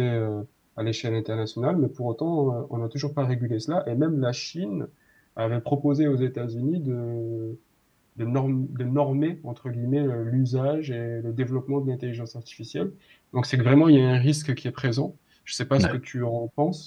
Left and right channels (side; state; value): both; identical; correlation 1.00